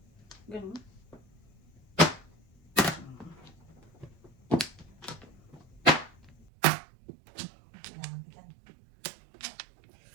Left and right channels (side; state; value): left; drops out; at 6.5 s